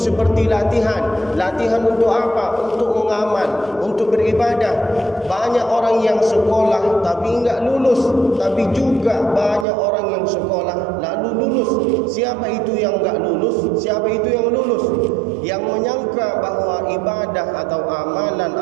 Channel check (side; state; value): left; drops out; at 9.7 s